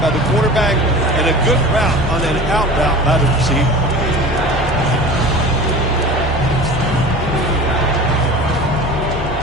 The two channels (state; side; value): normal; both; correlation 0.37